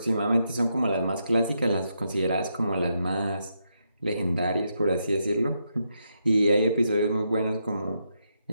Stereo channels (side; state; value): both; inverted; correlation -0.81